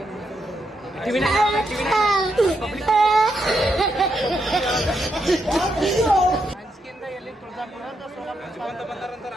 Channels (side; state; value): both; normal; correlation 0.81